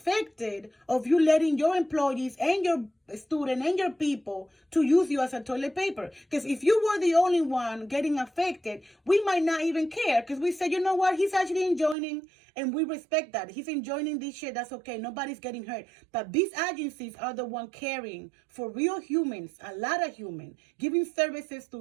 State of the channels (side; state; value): left; drops out; at 12.0 s